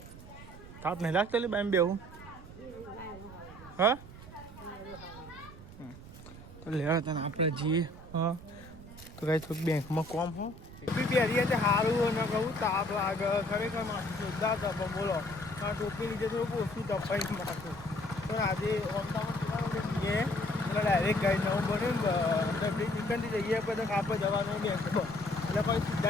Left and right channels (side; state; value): right; noise; rumble, 16 dB below the sound